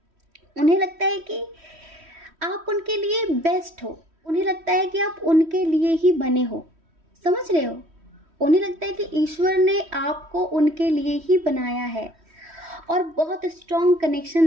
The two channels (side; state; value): left; late; 3.1 ms